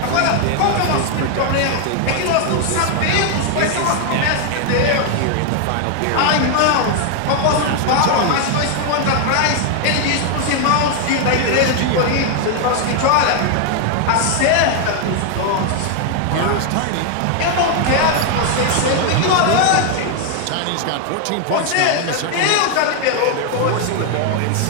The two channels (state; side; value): different; both; correlation 0.00